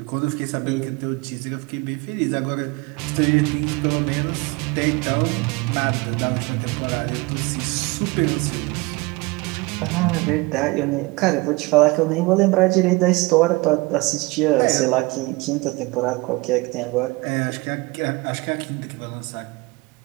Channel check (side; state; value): left; quieter; 24.4 dB